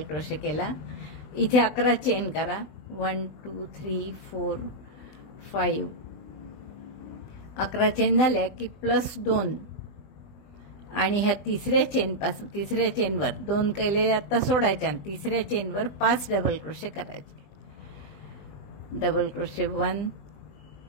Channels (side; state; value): right; late; 20 ms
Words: केला. इथे 11 चेन करा. 1 2 3 4 5. 11 चेन झाल्या की +2 आणि ह्या तिसऱ्या चेनवर 2 केलेले आता सोडायच्या आणि तिसऱ्या चेनवर 5 डबल क्रोशे करायचे. Double crochet 1